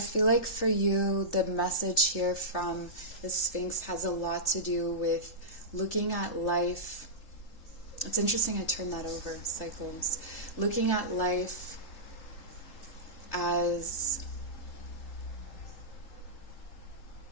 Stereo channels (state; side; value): late; right; 3.8 ms